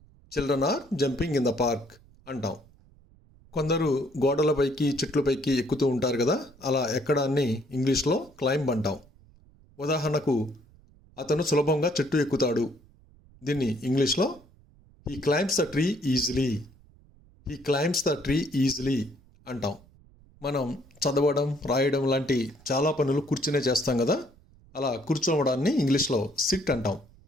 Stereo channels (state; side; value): noise; right; rumble, 27 dB below the sound